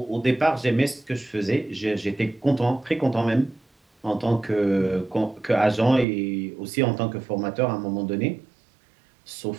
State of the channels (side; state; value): left; drops out; at 6.1 s